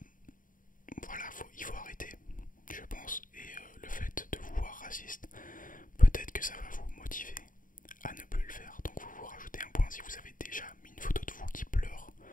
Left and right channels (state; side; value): late; right; 0.39 ms